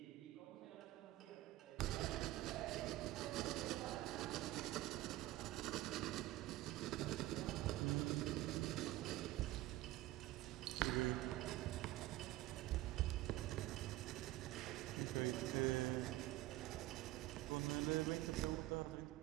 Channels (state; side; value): quieter; left; 16.8 dB